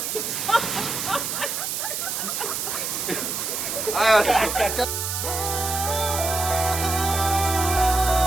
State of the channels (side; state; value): right; noise; hiss, 2 dB below the sound